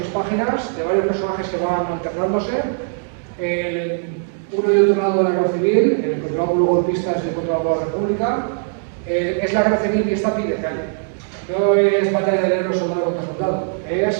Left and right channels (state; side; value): silent; left; digital silence